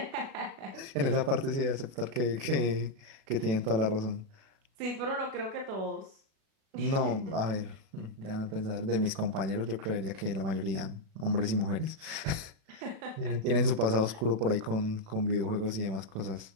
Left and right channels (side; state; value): left; late; 36 ms